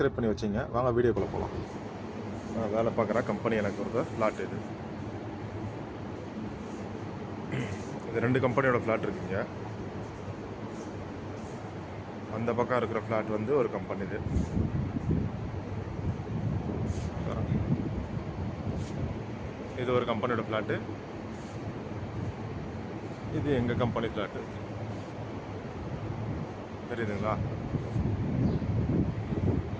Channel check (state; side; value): identical; both; correlation 1.00